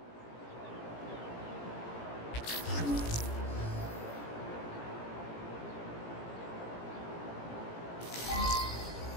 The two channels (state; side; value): late; right; 17 ms